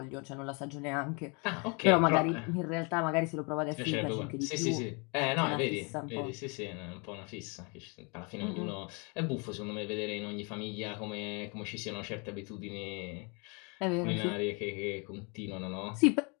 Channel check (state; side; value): quieter; right; 32.7 dB